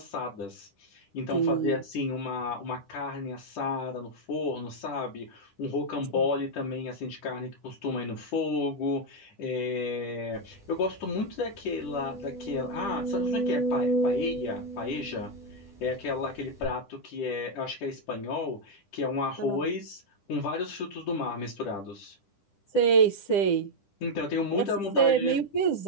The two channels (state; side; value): late; right; 10 ms